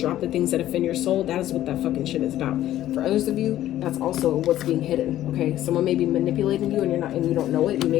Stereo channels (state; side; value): quieter; right; 13.2 dB